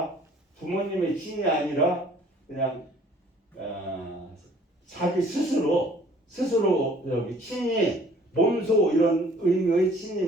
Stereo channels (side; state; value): both; normal; correlation 0.55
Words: 부모님의 친이 아니라 그냥 자기 스스로 여기 친이 몸소 이런 의미의